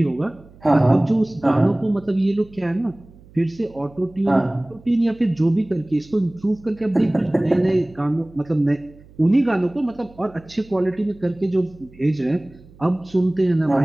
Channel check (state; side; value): noise; right; hum, 24 dB below the sound